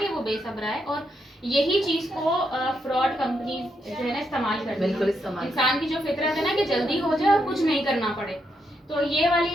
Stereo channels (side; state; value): both; normal; correlation 0.80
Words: वो बेसब्रा है, और यही चीज को फ्रॉड कंपनी जो है ना इस्तेमाल करती बिल्कुल है। इस्तेमाल इंसान की जो फितरत है ना कि जल्दी हो जाए और कुछ नहीं करना पड़े, तो ये